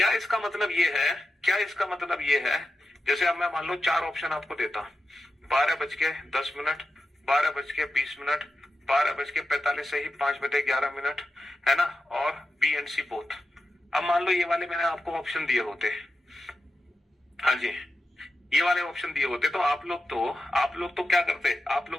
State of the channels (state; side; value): normal; both; correlation 0.90